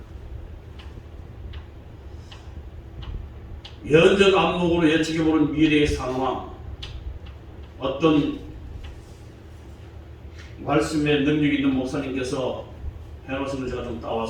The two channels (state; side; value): identical; both; correlation 1.00